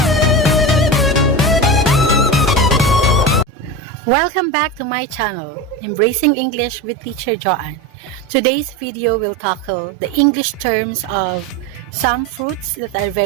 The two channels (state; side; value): normal; both; correlation 0.23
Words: Welcome back to my channel, Embracing English with Teacher Joanne. Today's video will tackle the English terms of some fruits that are